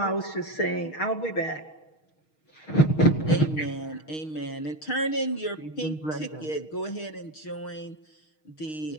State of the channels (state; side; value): late; right; 6.4 ms